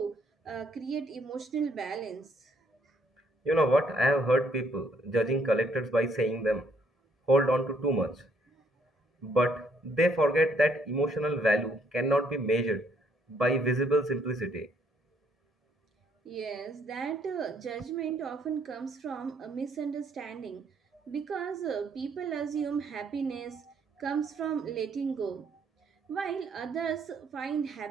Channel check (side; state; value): both; normal; correlation 0.68